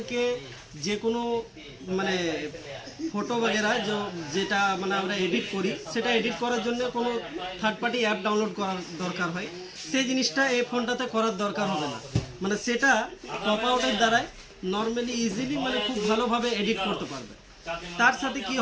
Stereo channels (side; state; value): both; identical; correlation 1.00